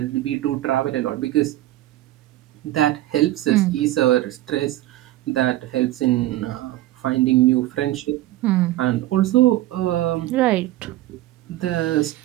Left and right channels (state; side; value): quieter; left; 15.7 dB